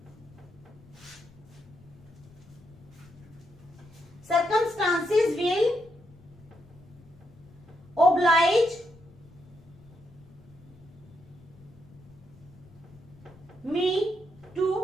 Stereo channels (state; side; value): noise; left; rumble, 23 dB below the sound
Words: will oblige me to